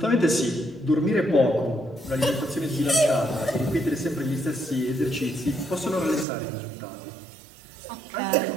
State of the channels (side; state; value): left; drops out; at 6.2 s